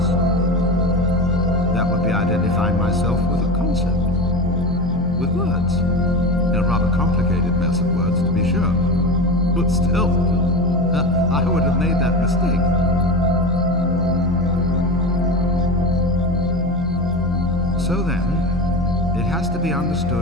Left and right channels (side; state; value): both; normal; correlation 0.26